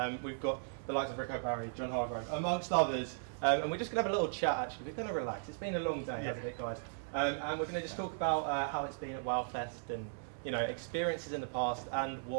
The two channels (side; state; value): left; silent; 53 dB below the other